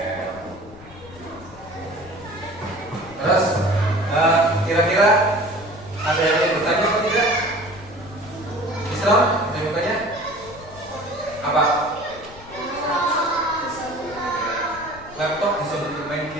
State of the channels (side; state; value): left; noise; rumble, 19 dB below the sound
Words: Terus kira-kira ada yang ingin bertanya atau tidak? Islam, yang bertanya apa? Laptop bisa untuk main